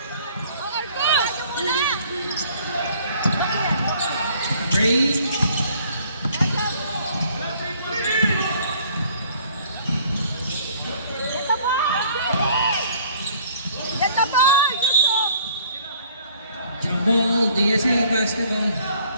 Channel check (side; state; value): both; inverted; correlation -0.58